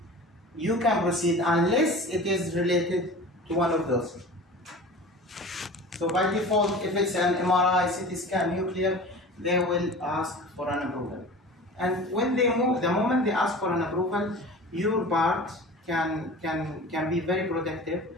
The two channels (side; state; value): both; normal; correlation 0.38